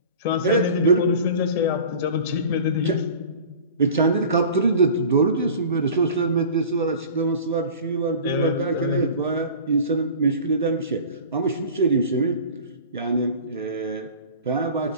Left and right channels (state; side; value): inverted; both; correlation -0.40